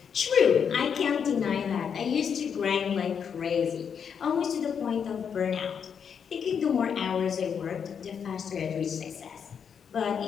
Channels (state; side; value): quieter; right; 7.2 dB